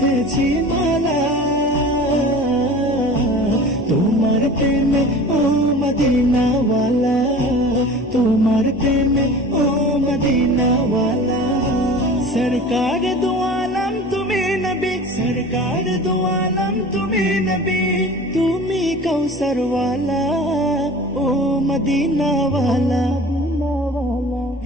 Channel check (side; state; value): both; normal; correlation 0.39